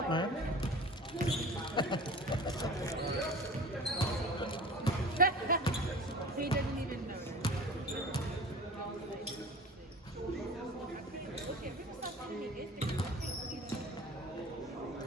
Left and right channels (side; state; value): both; normal; correlation 0.38